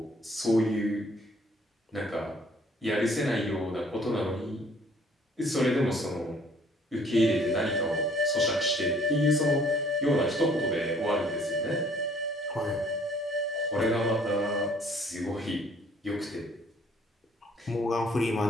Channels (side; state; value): both; normal; correlation 0.59